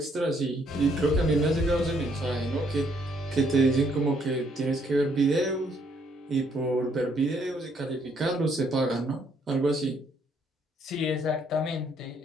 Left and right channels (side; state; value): both; normal; correlation 0.69